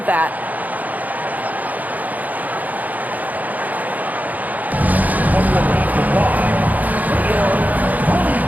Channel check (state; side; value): late; left; 0.080 ms